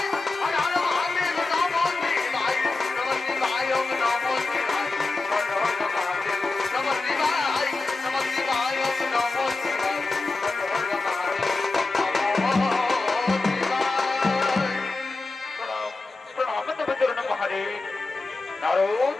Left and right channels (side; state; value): right; quieter; 3.5 dB